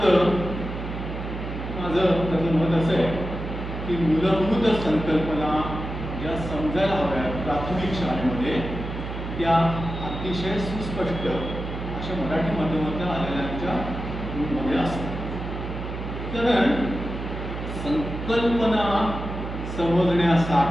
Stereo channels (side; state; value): right; noise; hum, 7 dB below the sound